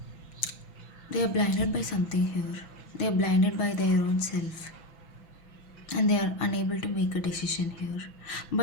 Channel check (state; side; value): late; right; 6.0 ms